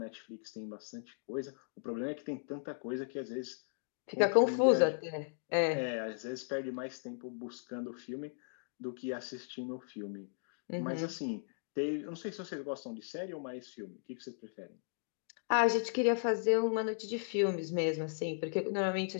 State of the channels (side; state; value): right; silent; digital silence